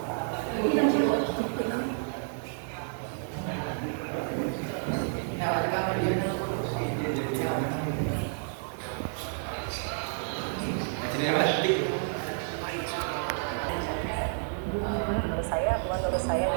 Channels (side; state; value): left; silent; 58 dB below the other